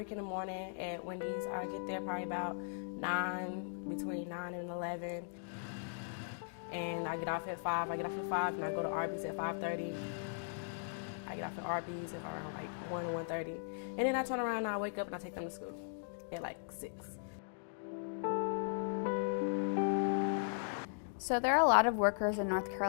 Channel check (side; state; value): right; silent; digital silence